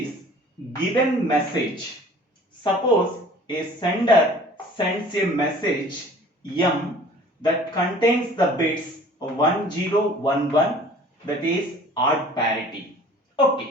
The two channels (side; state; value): both; normal; correlation 0.48